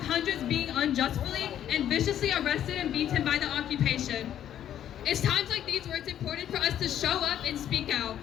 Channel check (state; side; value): quieter; right; 10.6 dB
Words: being unjustly and viciously arrested and beaten by the occupation. It's times like these where it's important for us to show up and speak out,